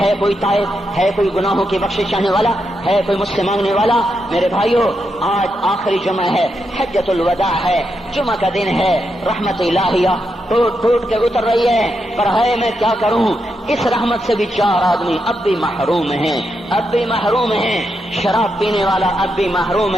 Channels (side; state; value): both; normal; correlation 0.84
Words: ہے کوئی تائب، ہے کوئی گناہوں کی بخشش چاہنے والا، ہے کوئی مجھ سے مانگنے والا۔ میرے بھائیو، آج آخری جمعہ ہے، حجۃ الوداع ہے، جمعہ کا دن ہے، رحمت الہیہ ٹوٹ ٹوٹ کے اتر رہی ہے، پر ہے میں کیا کروں، اس رحمت سے بھی 4 آدمی اب بھی محروم ہیں، اب بھی محروم ہیں۔ شراب پینے والا اب بھی محروم